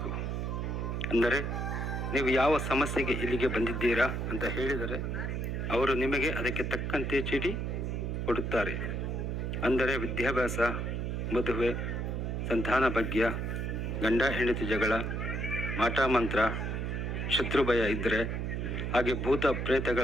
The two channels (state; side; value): noise; right; hum, 2 dB below the sound